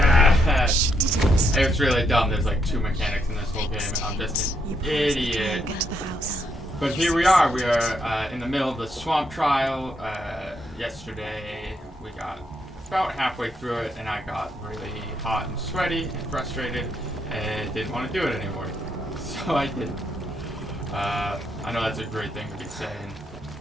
She didn't. It's really dumb. There's like 2 mechanics in this whole game, and I'm just an idiot. Get to the house. But here we are. We are in the middle of the swamp trial. Yesterday, we got about halfway through it, and I got really hot and sweaty and frustrated and didn't want to do it anymore. So I didn't. I know that's a great thing to be saying,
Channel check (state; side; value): normal; both; correlation 0.76